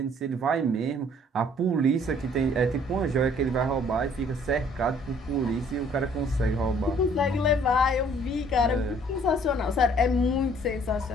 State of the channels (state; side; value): normal; both; correlation 0.58